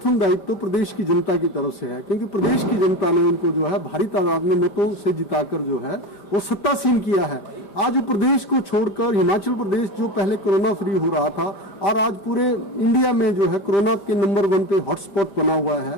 दायित्व तो प्रदेश की जनता की तरफ से है, क्योंकि प्रदेश की जनता ने उनको जो है भारी तादाद में मतों से जिताकर जो है वो सत्तासीन किया है। आज प्रदेश को छोड़कर हिमाचल प्रदेश जो पहले कोरोना फ्री हो रहा था और आज पूरे इंडिया में जो है कोरोना के नंबर 1 पे हॉटस्पॉट बना हुआ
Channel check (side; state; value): right; late; 5.1 ms